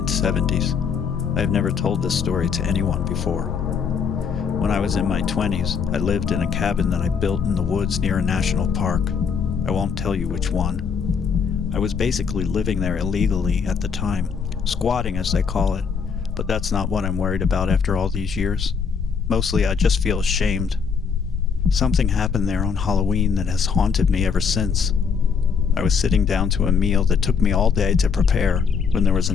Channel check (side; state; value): right; quieter; 6.2 dB